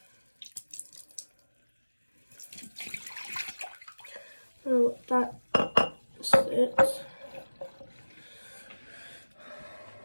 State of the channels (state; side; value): inverted; both; correlation -1.00